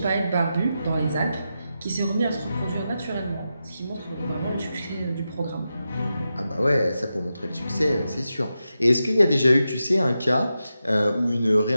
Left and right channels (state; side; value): inverted; both; correlation -0.89